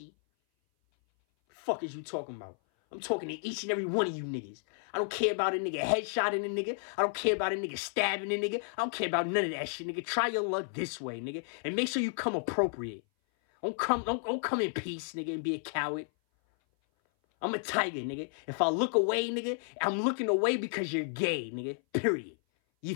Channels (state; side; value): silent; right; 56 dB below the other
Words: Fuck is you talking about? I'm talking to each and every one of you niggas. I don't care about a nigga headshotting a nigga. I don't care about a nigga stabbing a nigga. I don't care about none of that shit, nigga. Try your luck this way, nigga. And make sure you come appropriate. Don't come in peace, nigga, and be a coward. I'm a tiger, nigga. If I look away, nigga, I'm looking away because you're gay, nigga. Period. You